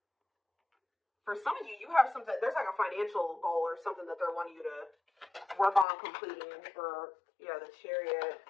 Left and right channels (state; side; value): drops out; right; at 5.9 s